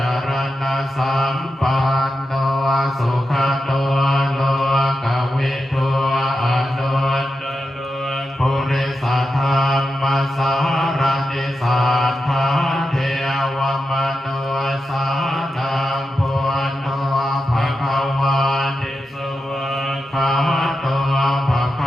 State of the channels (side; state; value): both; normal; correlation 0.89